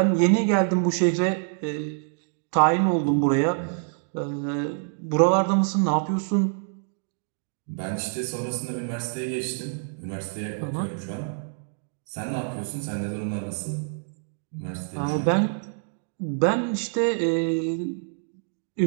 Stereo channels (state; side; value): silent; left; digital silence